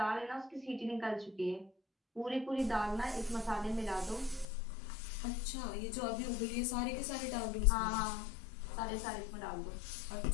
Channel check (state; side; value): drops out; right; at 4.5 s